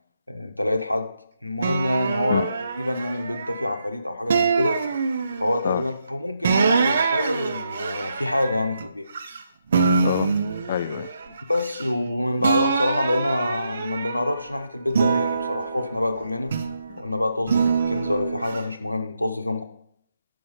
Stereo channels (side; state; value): both; inverted; correlation -0.81